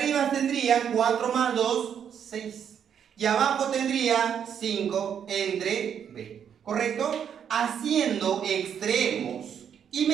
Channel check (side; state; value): left; quieter; 8.3 dB